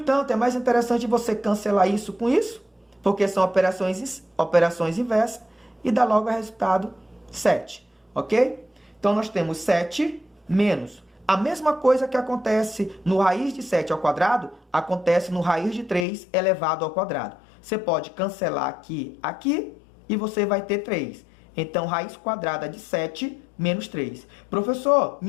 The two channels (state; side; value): drops out; right; at 16.1 s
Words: é mais interessante você cancelar isso com isso, porque são operações inversas, e dá logo o resultado 7. Ok? Então, nós temos 7 menos. A mesma coisa que acontece no raiz de 7 ao quadrado, acontece no raiz de 3 elevado ao quadrado. Você pode cancelar aqui, e você vai ter 3. Então, raiz quadrada de 7 menos 3. Professor,